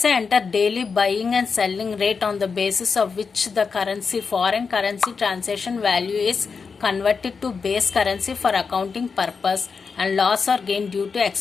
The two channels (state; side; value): quieter; right; 5.3 dB